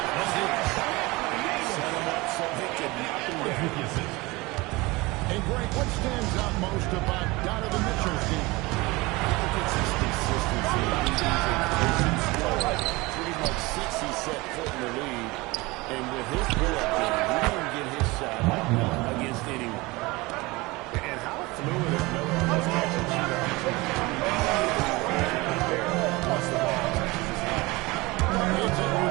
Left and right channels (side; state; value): left; quieter; 22.8 dB